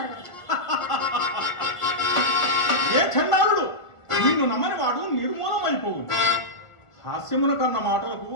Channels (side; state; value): right; late; 1.5 ms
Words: ఏ చండాలుడు! నిన్ను నమ్మని వాడు నిర్మూలమైపోవు. హాస్యమున కన్న మాటలకు